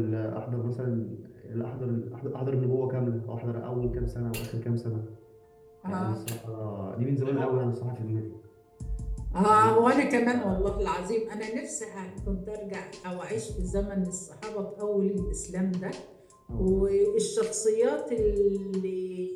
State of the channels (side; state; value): both; identical; correlation 1.00